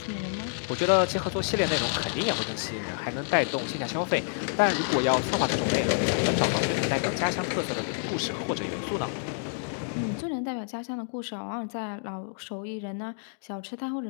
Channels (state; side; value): silent; right; digital silence